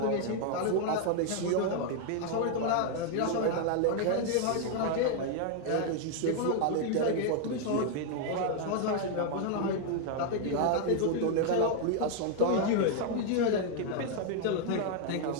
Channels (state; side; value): different; both; correlation 0.00